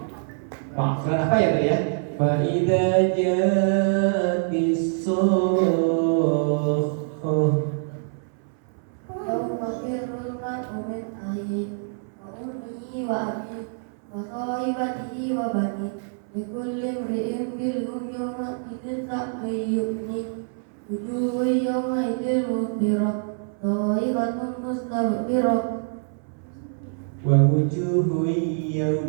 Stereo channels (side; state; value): left; silent; 62 dB below the other